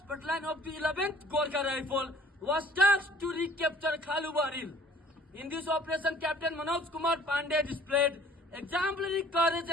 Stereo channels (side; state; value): both; normal; correlation 0.53